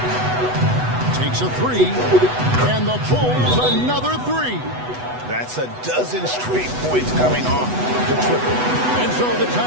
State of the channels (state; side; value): late; left; 8.1 ms